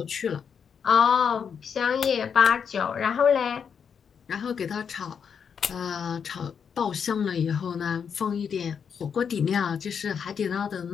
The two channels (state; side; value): quieter; right; 6.9 dB